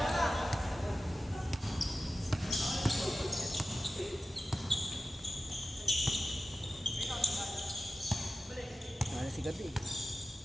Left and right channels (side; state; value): both; normal; correlation 0.94